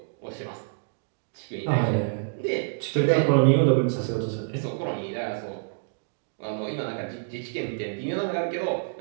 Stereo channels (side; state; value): left; silent; digital silence